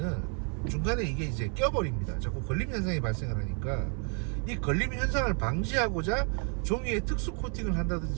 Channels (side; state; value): left; quieter; 39.8 dB